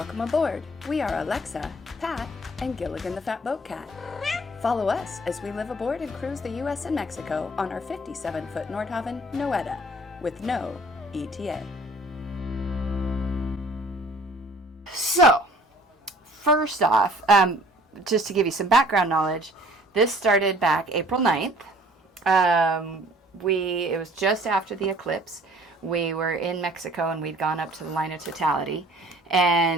aboard. We are Alexa, Pat, and Gilligan the Fat Boat Cat. Follow us as we live aboard and cruise the U.S. and Mexico on our 57-foot Nordhavn Noeta with no ETA. So, first off, just to give you some background knowledge, this started back April 9th. It was just after the eclipse. We were in Mexico and we'd gone up to the line of totality.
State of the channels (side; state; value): both; normal; correlation 0.53